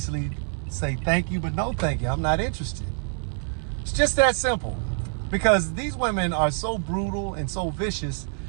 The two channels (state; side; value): silent; left; 61 dB below the other